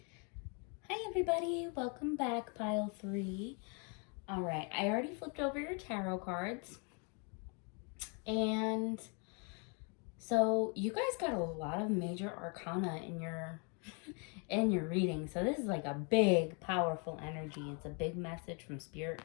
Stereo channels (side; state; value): right; quieter; 36.3 dB